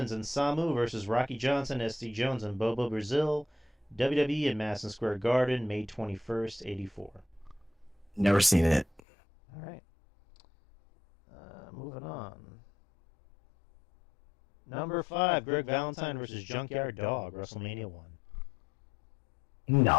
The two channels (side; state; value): right; drops out; at 9.0 s